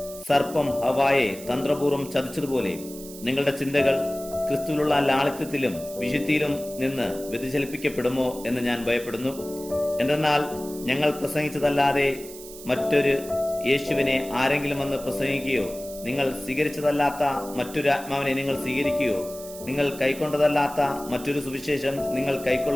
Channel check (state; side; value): noise; right; hiss, 15 dB below the sound